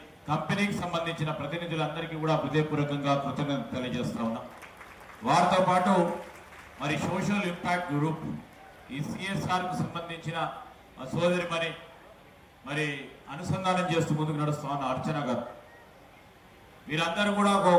కంపెనీకి సంబంధించిన ప్రతినిధులందరికీ కూడా హృదయపూర్వకంగా కృతజ్ఞత తెలియజేస్తా ఉన్నాం. వారితో పాటు మరి సోషల్ ఇంపాక్ట్ గ్రూప్, ఈ సిఎస్ఆర్కు సంబంధించిన మా సోదరిమని మరి అనుసంధానం చేస్తూ ముందుకు నడుస్తా ఉన్న అర్చన గారు, వీరందరూ కూడా ఒక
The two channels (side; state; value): both; identical; correlation 1.00